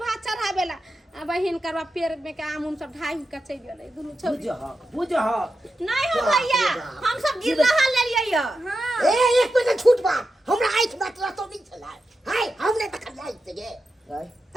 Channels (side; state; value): both; normal; correlation 0.89